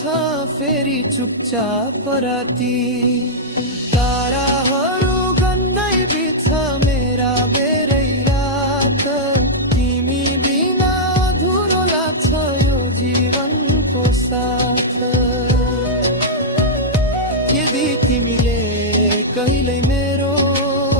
फेरि चुपचाप राती। ताराहरू गन्दै बित्छ मेरा बेरै रात, तिमी बिना अधुरो लाग्छ यो जीवनको साथ। यदि तिमीले कहिल्यै मेरो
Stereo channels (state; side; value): normal; both; correlation -0.08